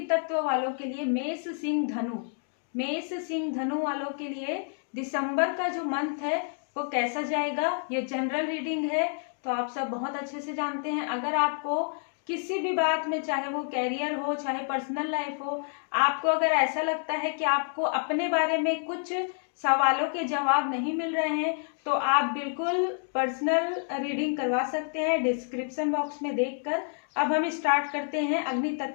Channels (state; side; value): silent; right; 59 dB below the other